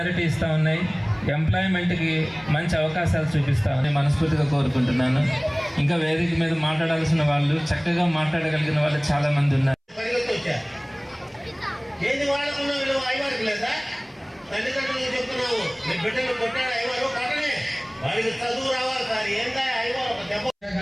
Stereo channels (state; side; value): identical; both; correlation 1.00